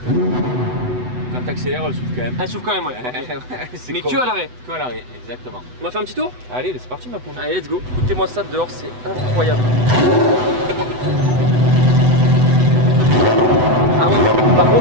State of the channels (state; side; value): late; left; 8.0 ms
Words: Quand t'accélères, elle souffle quand même. Elle s'ouvre quand même, ouais. Ok. Ouais, c'est Mais con. que à l'arrêt. Que à l'arrêt, exactement. On va faire un petit tour? Allez, c'est parti ma poule. Allez, let's go. Écoutez-moi ça dehors, c'est incroyable. Ah ouais. Par